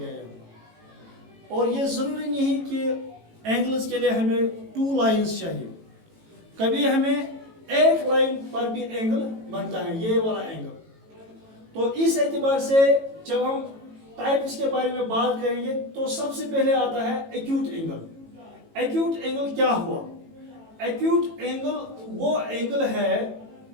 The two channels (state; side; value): late; left; 18 ms